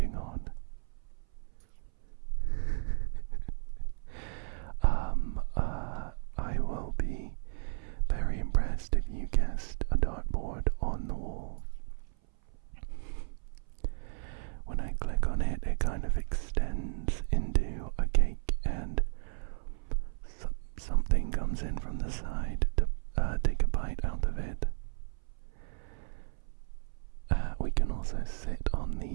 on? I will be very impressed if you guessed a dartboard on the wall. When I click on it, it kind of extends into a cake, and something comes in from the side to take a bite out of it. We can also sit on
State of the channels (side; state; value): left; silent; 55 dB below the other